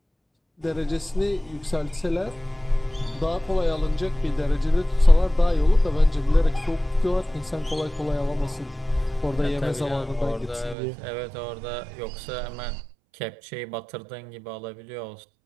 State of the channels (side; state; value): left; drops out; at 10.8 s